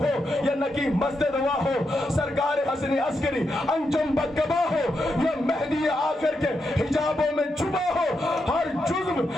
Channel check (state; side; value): normal; both; correlation 0.84